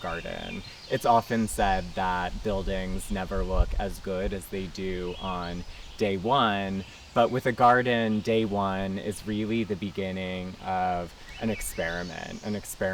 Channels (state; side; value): identical; both; correlation 1.00